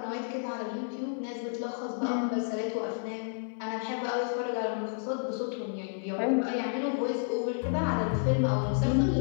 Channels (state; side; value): silent; right; 57 dB below the other